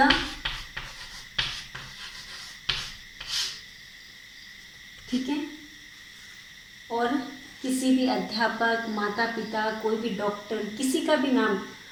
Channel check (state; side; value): identical; both; correlation 1.00